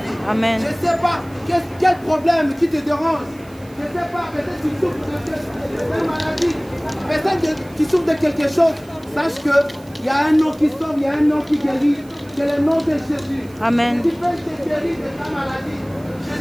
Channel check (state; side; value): noise; right; hiss, 26 dB below the sound